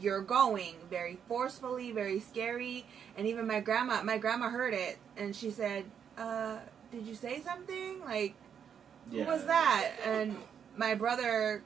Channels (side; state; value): left; quieter; 7.9 dB